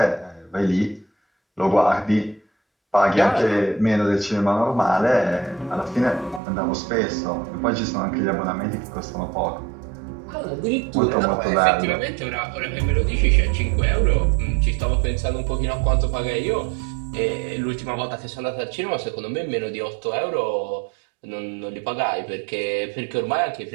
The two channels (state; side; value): drops out; left; at 6.4 s